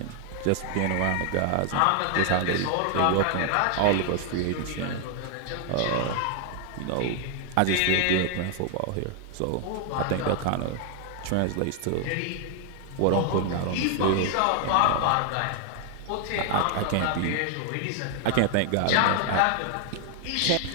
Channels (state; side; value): different; both; correlation 0.00